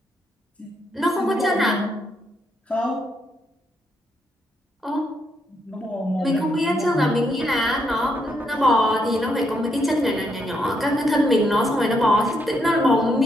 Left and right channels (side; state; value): both; normal; correlation 0.77